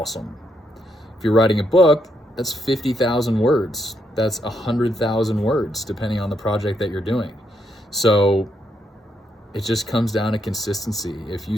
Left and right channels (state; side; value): normal; both; correlation 0.78